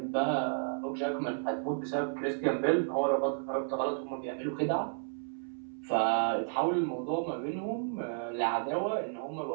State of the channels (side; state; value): left; silent; 56 dB below the other